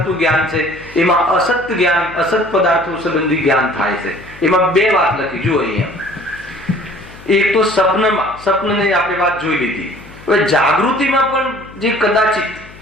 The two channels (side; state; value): left; noise; hum, 20 dB below the sound